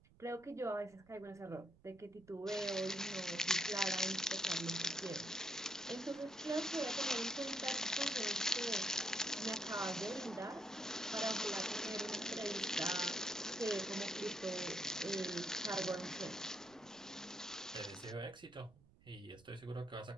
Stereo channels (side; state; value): right; noise; rumble, 26 dB below the sound